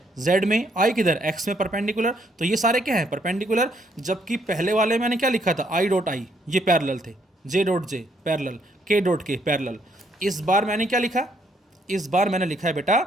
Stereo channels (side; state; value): both; normal; correlation 0.71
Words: जेड में, आई किधर एक्स में परपेंडिकुलर। तो ये सारे क्या हैं परपेंडिकुलर। जबकि पहले वाले मैंने क्या लिखा था आई डॉट आई, ये पैरेलल थे, जे डॉट जे पैरेलल, के डॉट के पैरेलल। इस बार मैंने क्या लिखा, इस बार मैंने लिखा है बेटा